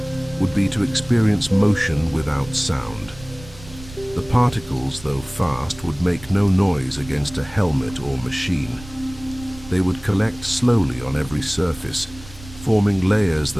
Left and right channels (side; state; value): right; noise; rumble, 17 dB below the sound